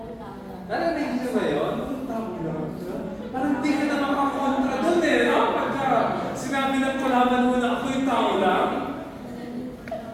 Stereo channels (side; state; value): both; identical; correlation 1.00